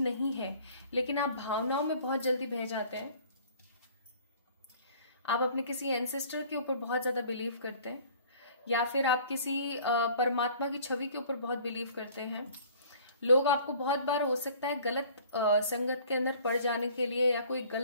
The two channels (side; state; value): both; inverted; correlation -0.51